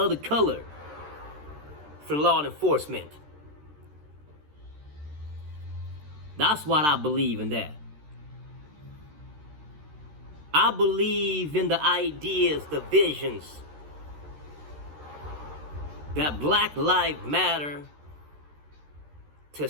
color for law enforcement. That's what I believe in that. I believe in the ideas, the visions that Black Lives Matter to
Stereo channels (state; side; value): late; left; 13 ms